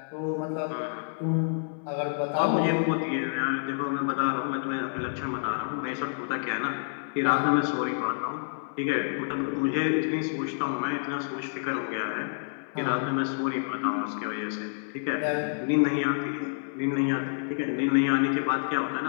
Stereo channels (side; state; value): right; silent; 59 dB below the other